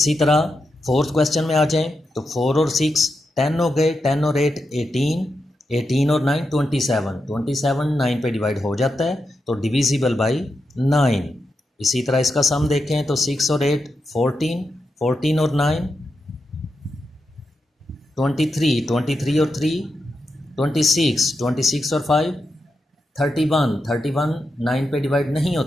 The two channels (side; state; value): both; normal; correlation 0.87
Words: तरह फोर्थ क्वेश्चन में आ जाएं तो 4 और 6 10 हो गए, 10 और 8 18, 18 और 9 27। 27 9 पे डिवाइड हो जाता है, तो डिविजिबल बाय 9। इसी तरह इसका सम देखें तो 6 और 8 14, 14 और 9 23, 23 और 3 26, 26 और 5 31, 31 9 पे डिवाइड नहीं